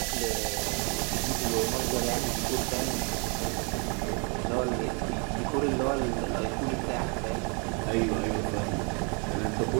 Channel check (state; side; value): quieter; left; 34.9 dB